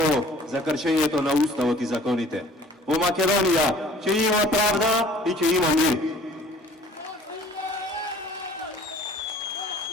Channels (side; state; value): both; normal; correlation 0.51